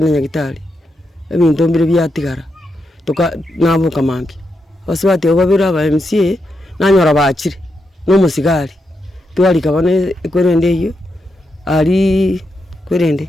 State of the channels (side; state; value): both; normal; correlation 0.84